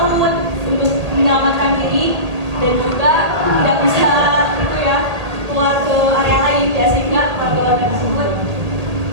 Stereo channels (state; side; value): late; left; 1.8 ms